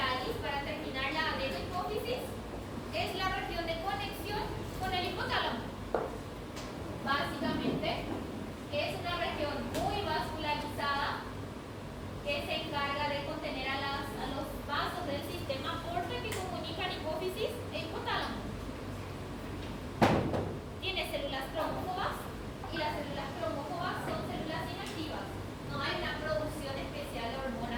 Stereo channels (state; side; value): identical; both; correlation 1.00